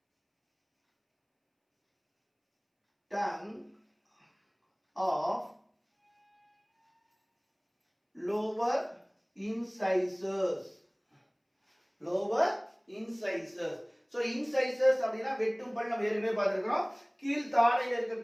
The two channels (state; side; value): identical; both; correlation 1.00